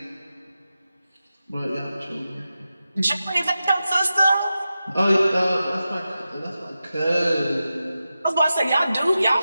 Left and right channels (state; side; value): inverted; both; correlation -0.92